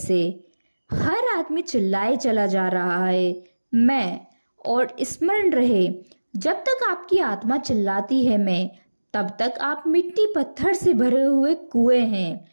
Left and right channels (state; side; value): inverted; both; correlation -1.00